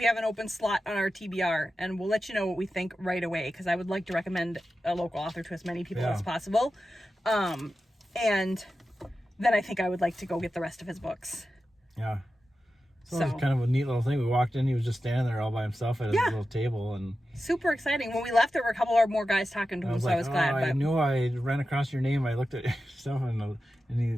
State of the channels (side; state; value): both; normal; correlation 0.92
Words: have an open slot on our TBR, and we'll let you know what we think right away, because I would like to recommend a local author to as many people as possible. And then I think I would like to go get the rest of his books. Yeah. So it was kind of a neat little thing. We walked in, he was just standing there all by himself at his Yeah. little table, and Super exciting. When we left, there were a couple of more guys talking to him, so I was glad. I But knew I ran across your name. I looked at your stuff, and he